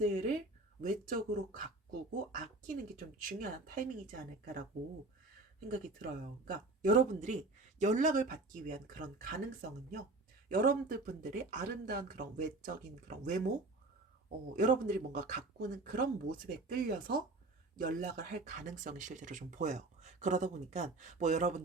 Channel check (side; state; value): left; quieter; 3.1 dB